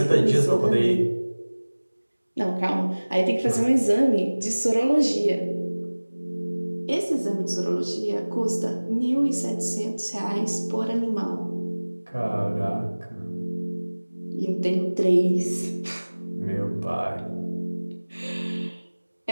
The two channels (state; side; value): inverted; both; correlation -1.00